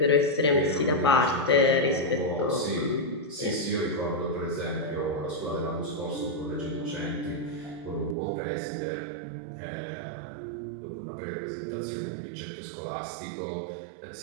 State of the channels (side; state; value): left; drops out; at 8.2 s